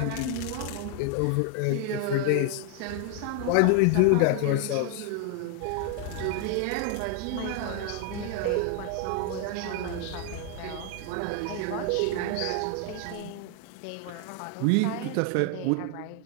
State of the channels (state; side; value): different; both; correlation 0.00